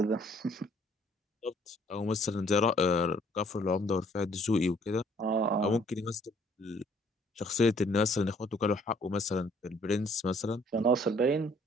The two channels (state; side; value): normal; both; correlation 0.61